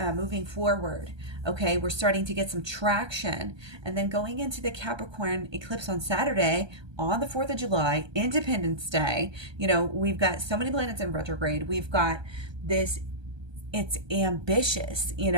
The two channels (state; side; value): late; left; 1.2 ms